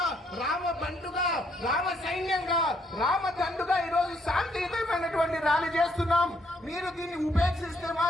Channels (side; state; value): both; normal; correlation 0.71